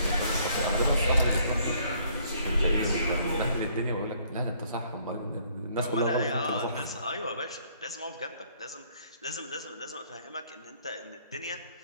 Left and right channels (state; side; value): inverted; both; correlation -0.63